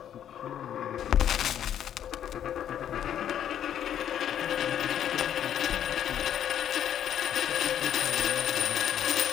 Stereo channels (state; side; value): quieter; right; 10.0 dB